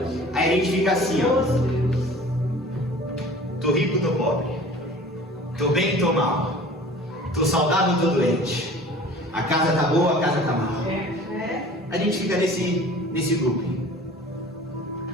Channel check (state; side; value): normal; both; correlation 0.44